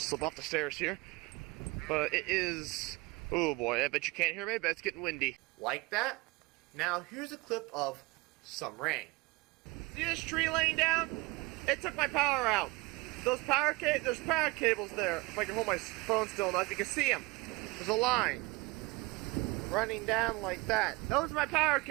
slip off the stairs here. But it is, oh boy, I bet you can't hear me, but it's getting windy. Like that. Now here's a clip of some rain. See this tree laying down? It took my power out. There's power cables there. If I can hold my phone still enough, you can see them. There's a line running down like that. Those are my power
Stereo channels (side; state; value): left; quieter; 23.6 dB